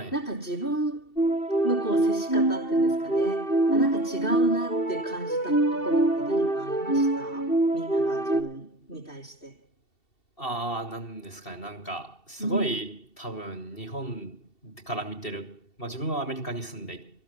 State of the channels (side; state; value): right; late; 2.7 ms